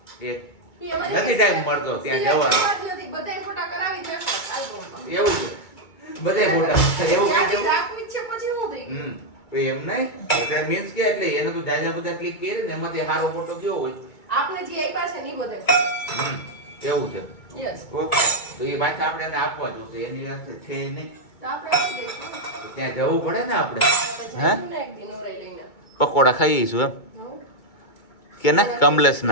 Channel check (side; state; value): right; late; 2.2 ms